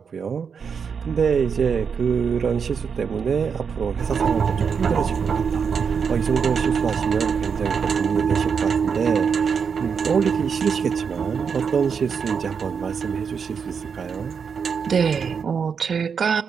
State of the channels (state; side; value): quieter; left; 6.3 dB